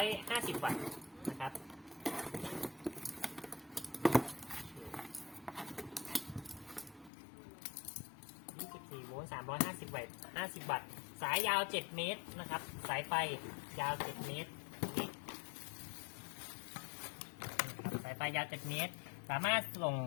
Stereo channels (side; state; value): right; drops out; at 7.1 s